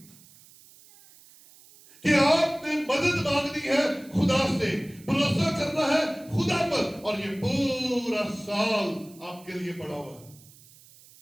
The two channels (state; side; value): noise; right; hiss, 24 dB below the sound